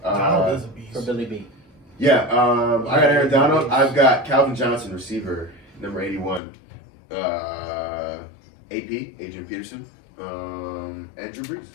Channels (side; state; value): right; drops out; at 6.4 s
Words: Donald is a beast. for Billy B. Yeah, I got Aaron Donald. I've got Calvin Johnson, receiver, number 81. AP, Adrian Peterson, and Drew Brees.